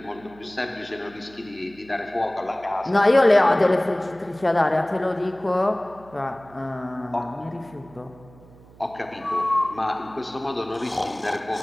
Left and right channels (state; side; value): noise; right; hum, 23 dB below the sound